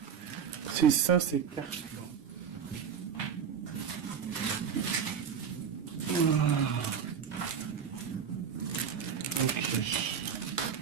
C'est ça, c'est carte. Ok.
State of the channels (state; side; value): quieter; left; 7.3 dB